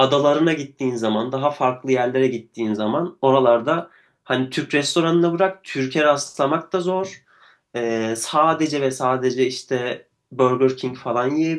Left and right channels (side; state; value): both; identical; correlation 1.00